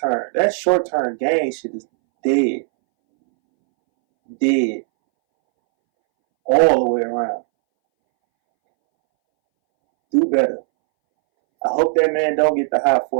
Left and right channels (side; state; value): left; silent; 65 dB below the other